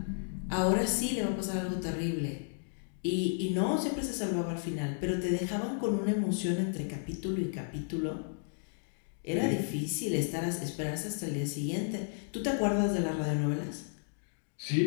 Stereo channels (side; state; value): right; silent; digital silence